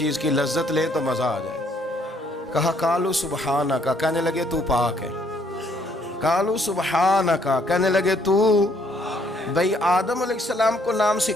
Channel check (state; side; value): normal; both; correlation 0.67